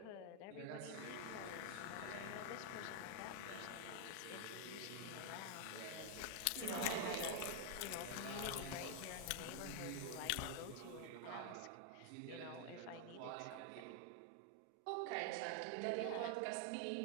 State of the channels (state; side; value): different; both; correlation 0.00